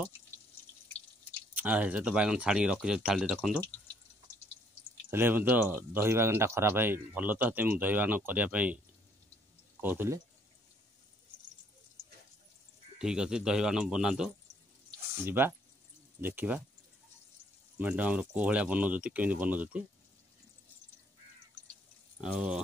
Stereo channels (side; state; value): both; normal; correlation 0.66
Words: से तो बैगन छाणी रखी थाली रखु. तो दही बैगनटा खराब है भल. तो दही बैगन करने कहते ठीक अच्छे. दही बैगन बनातु जीवा देखा मैडम आम कौ भाया बनाऊँ केमी बनाऊँ